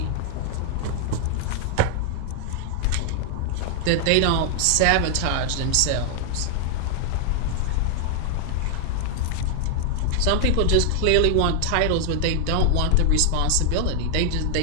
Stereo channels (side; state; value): both; different; correlation 0.00